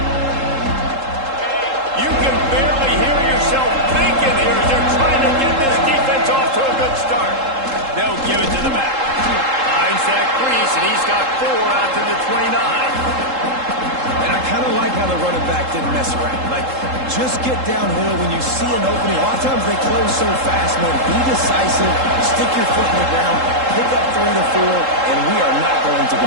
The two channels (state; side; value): late; left; 3.7 ms